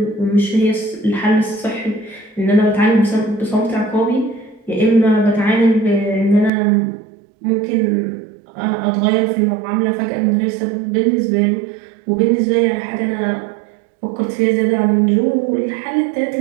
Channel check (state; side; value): drops out; left; at 6.5 s